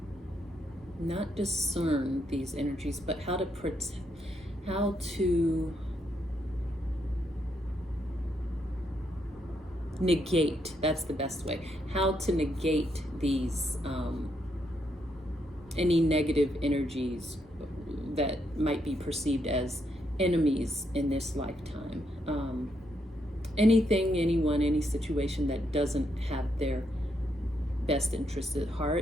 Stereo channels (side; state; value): both; normal; correlation 0.78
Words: not discern these energies, but how to negate, that's the best way, how to negate these any negative energies that might be perceived as enemies in this lifetime. Anything, anyone, any situation that doesn't have their best interest at